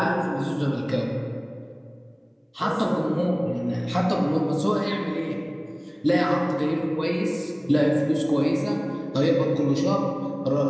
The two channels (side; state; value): both; identical; correlation 1.00